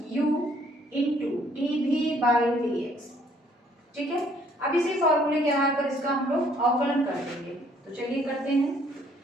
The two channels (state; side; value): normal; both; correlation 0.63